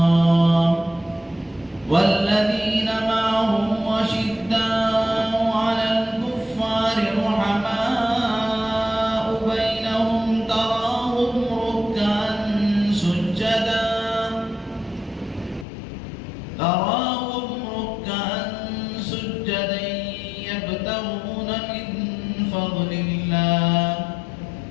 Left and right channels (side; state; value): right; drops out; at 15.7 s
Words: والذين معه أشداء على الكفار رحماء بينهم تراهم ركعا سجدا يبتغون من فضل الله.